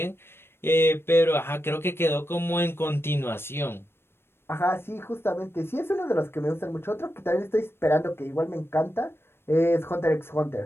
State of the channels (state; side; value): late; right; 0.12 ms